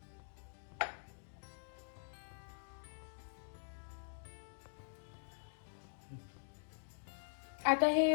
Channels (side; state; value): right; silent; digital silence